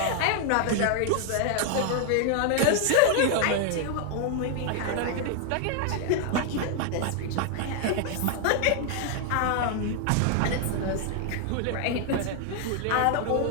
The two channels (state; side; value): different; both; correlation 0.00